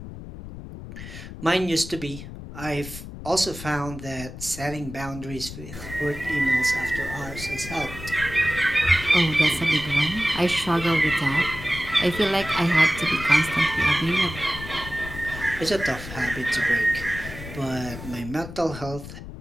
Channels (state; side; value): noise; left; rumble, 12 dB below the sound